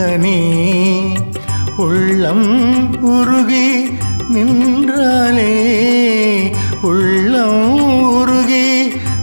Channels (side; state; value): both; inverted; correlation -1.00